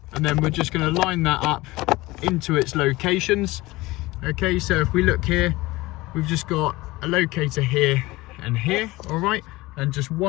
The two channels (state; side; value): quieter; right; 20.2 dB